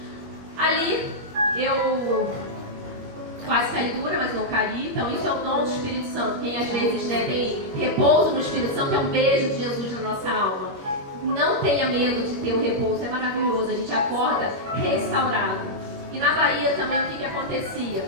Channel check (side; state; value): left; late; 21 ms